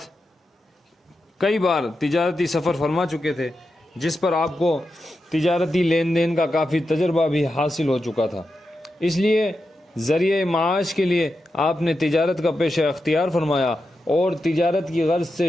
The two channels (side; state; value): both; normal; correlation 0.89